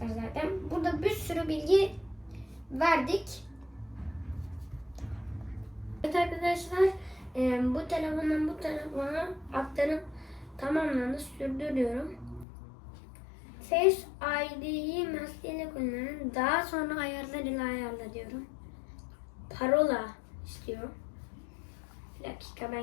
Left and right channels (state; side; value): drops out; right; at 12.5 s